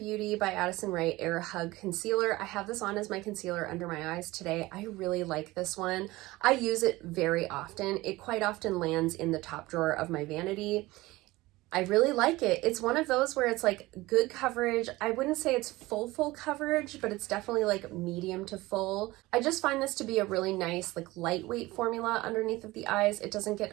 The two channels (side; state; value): left; quieter; 19.6 dB